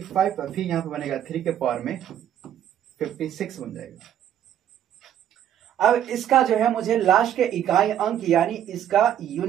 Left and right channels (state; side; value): quieter; left; 10.4 dB